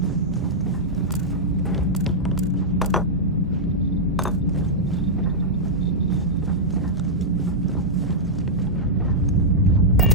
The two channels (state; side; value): normal; both; correlation -0.08